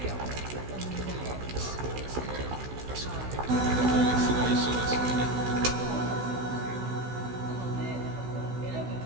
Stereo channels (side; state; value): left; late; 16 ms